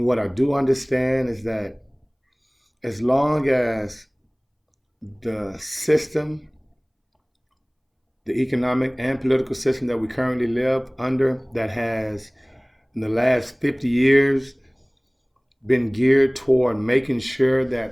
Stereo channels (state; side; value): identical; both; correlation 1.00